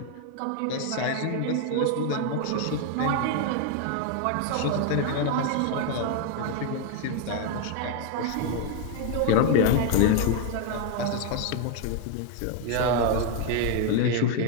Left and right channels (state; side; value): different; both; correlation 0.01